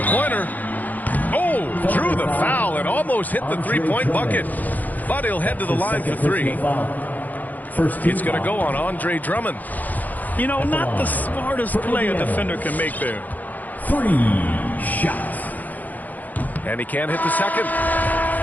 Oh, drew the foul and almost hit the three-point bucket. But he'll head to the line for 3. It's going to go on Andre Drummond. You know, not the smartest play a defender can make there. 3 shots. And he can't hit the second.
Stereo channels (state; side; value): late; right; 0.081 ms